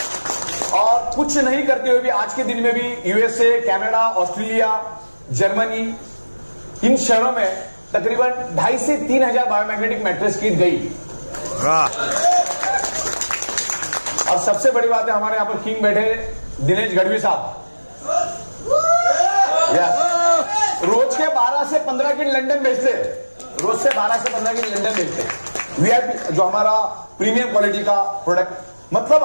और कुछ नहीं करते हुए भी आज के दिन में भी यूएसए, कनाडा, ऑस्ट्रेलिया, जर्मनी, इन शहरों में तकरीबन 2,500 से 3,000 बायोमैग्नेटिक मैट्रेस किट गई। और सबसे बड़ी बात है, हमारे यहां पर किंग बैठे दिनेश गढ़वी साहब, रोज के 12 से 15 किट लंदन भेजते, रोज से 12 से 15 किट लंदन भेजते। वीआईपी जो हमारा प्रीमियम क्वालिटी का प्रोडक्ट, मतलब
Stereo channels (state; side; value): inverted; both; correlation -1.00